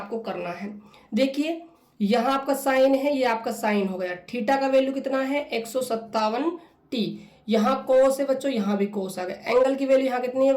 करना है। देखिए यहाँ आपका साइन है, ये आपका साइन हो गया। थीटा का वैल्यू कितना है, 157 टी। यहाँ कोस है बच्चों, यहाँ भी कोस आ गया। एंगल की वैल्यू यहाँ कितनी है,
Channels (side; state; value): both; identical; correlation 1.00